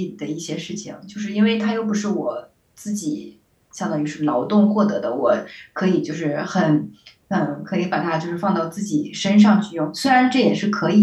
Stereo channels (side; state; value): both; identical; correlation 1.00